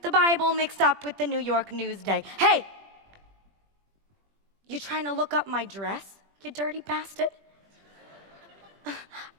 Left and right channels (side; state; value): left; late; 20 ms